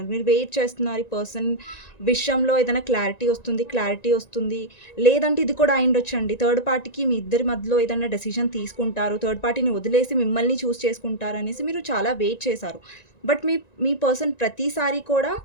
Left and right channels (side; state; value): right; late; 1.9 ms